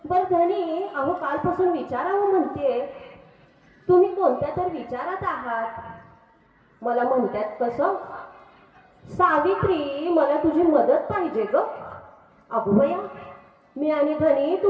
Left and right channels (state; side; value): identical; both; correlation 1.00